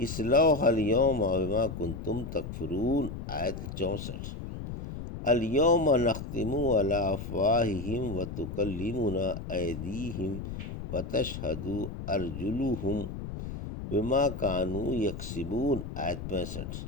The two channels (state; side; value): noise; left; rumble, 8 dB below the sound